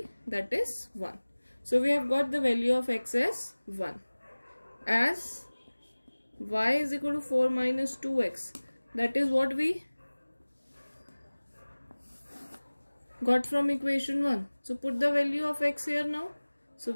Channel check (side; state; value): both; inverted; correlation -1.00